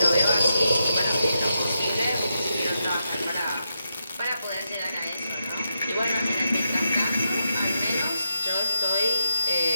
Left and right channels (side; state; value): both; inverted; correlation -0.84